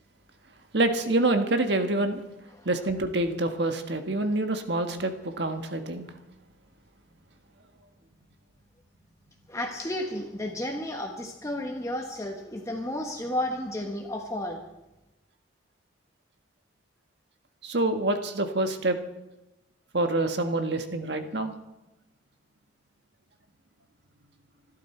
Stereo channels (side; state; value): both; normal; correlation 0.18